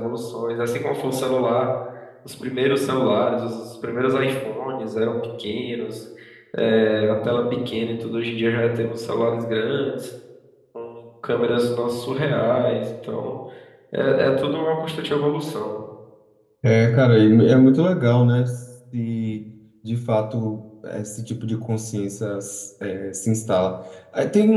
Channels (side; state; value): both; identical; correlation 1.00